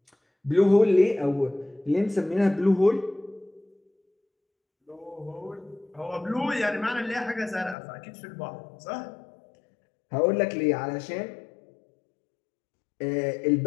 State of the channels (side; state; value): right; drops out; at 7.8 s